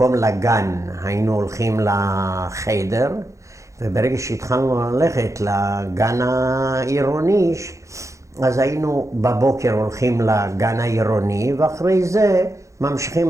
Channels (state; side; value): late; left; 0.15 ms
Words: לגן, היינו הולכים לחדר, וברגע שהתחלנו ללכת לגן העירוני, אז היינו בבוקר הולכים לגן העירוני, ואחרי זה